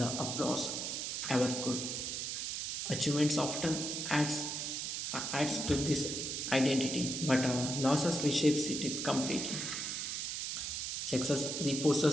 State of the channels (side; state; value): right; noise; hiss, 3 dB below the sound